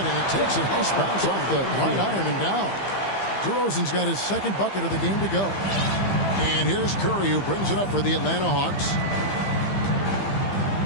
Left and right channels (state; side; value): late; right; 15 ms